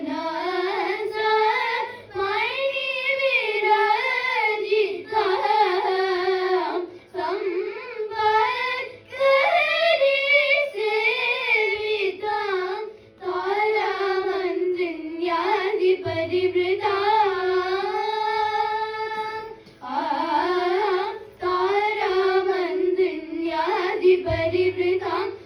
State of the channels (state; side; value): identical; both; correlation 1.00